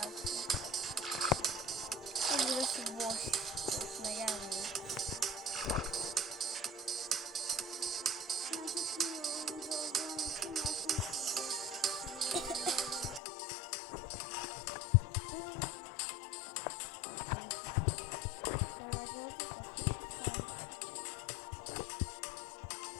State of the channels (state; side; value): drops out; right; at 13.2 s